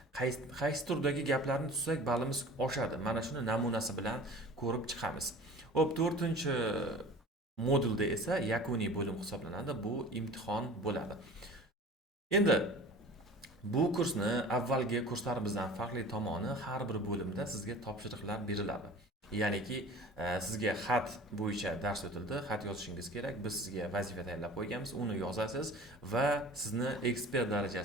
qaysi turdagi gaplarni tuzsak ballimiz oshadi. Mana shuni namunasi bilan ko'rib chiqamiz. Xo'p, 4-chi modulda esa yakuniy bo'lim hisoblanadi. Bu imtihon bo'ladi. Endi bu kursni avvalgi kurslarimizdan farqli tomoni, har bir bo'limda sizga topshiriqlar beriladi. Ya'niki sizga xat bo'yicha dars o'tildi, xat yozishingiz kerak. Biz sizga vazifa tayyorlab qo'yganmiz, uni yozasiz va sizni ekspert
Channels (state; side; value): normal; both; correlation 0.41